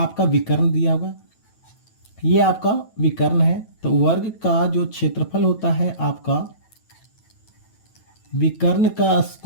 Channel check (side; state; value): right; late; 9.1 ms